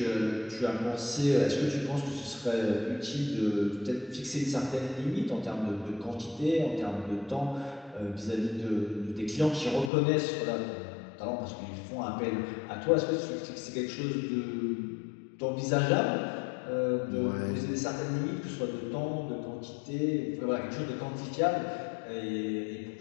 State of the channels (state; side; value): drops out; right; at 9.9 s